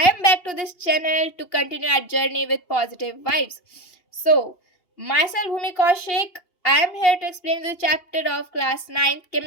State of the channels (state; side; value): late; right; 2.8 ms